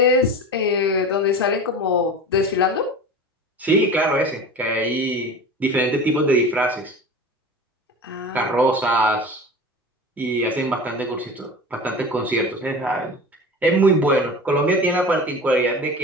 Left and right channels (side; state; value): both; normal; correlation 0.34